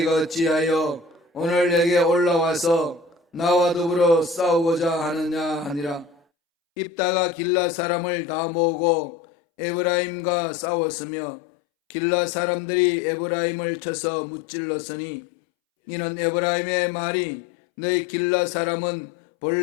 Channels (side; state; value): right; drops out; at 6.2 s